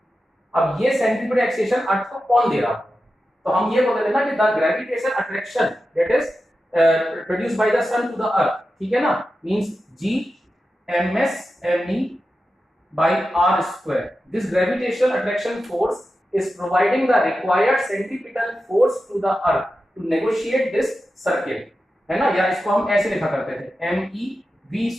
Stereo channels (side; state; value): both; normal; correlation 0.91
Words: अब ये सेंट्रीपिटल एक्सेलरेशन अर्थ को कौन दे रहा है, तो हम ये बोल रहे थे ना कि the gravitation attraction that is produced by the sun to the earth, ठीक है ना, means g ms me by r square. This gravitational attraction force is providing the required centripetal force to the earth to negotiate this circle, है ना, या इसको हम ऐसे लिखा करते थे me